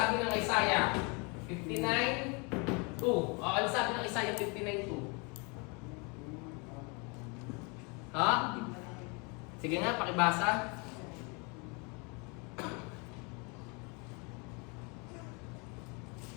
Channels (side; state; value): right; quieter; 31.7 dB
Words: ng Isaiah? 59:2. Ano sabi ng Isaiah 59:2? Ha? Sige nga, pakibasa.